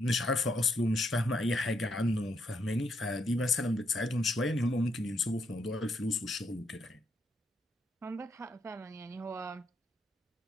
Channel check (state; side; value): normal; both; correlation 0.77